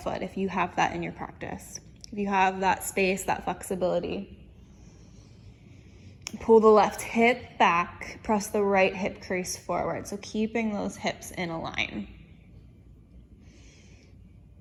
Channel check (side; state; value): both; identical; correlation 1.00